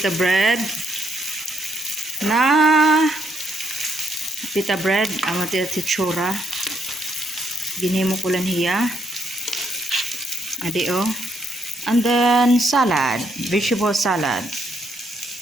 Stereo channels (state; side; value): normal; both; correlation 0.74